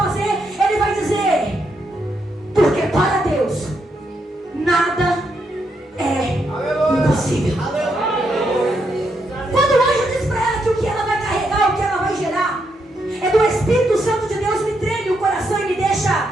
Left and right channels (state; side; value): normal; both; correlation 0.79